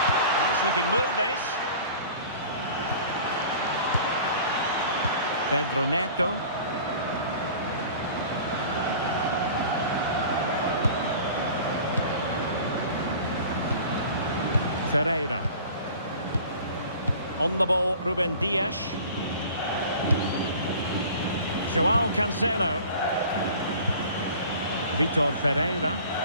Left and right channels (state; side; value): inverted; both; correlation -0.44